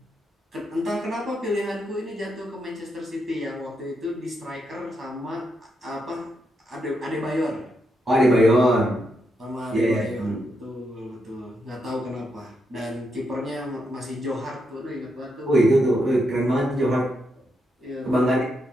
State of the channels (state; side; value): normal; both; correlation 0.82